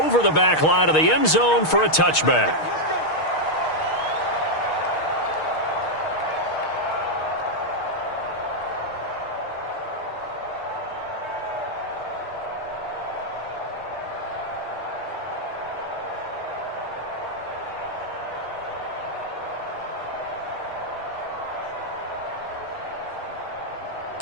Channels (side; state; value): right; late; 6.4 ms